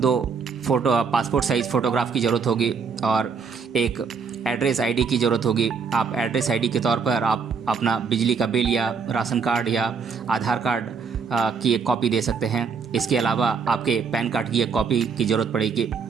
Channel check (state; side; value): quieter; left; 5.6 dB